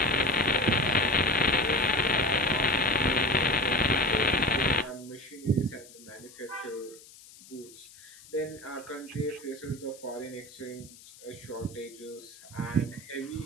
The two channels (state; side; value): noise; left; hiss, 21 dB below the sound